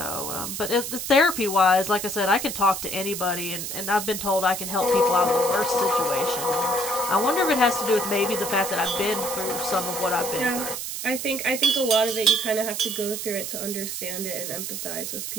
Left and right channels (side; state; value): right; noise; hiss, 5 dB below the sound